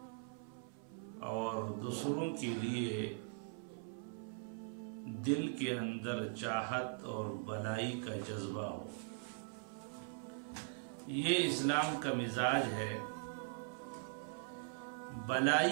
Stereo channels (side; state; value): left; silent; 50 dB below the other